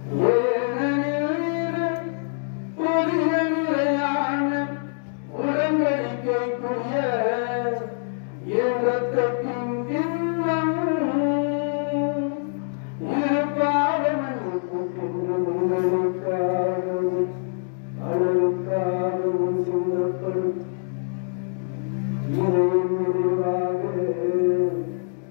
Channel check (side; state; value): right; silent; digital silence